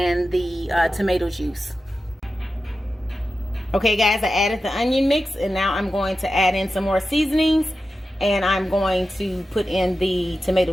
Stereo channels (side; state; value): both; normal; correlation 0.92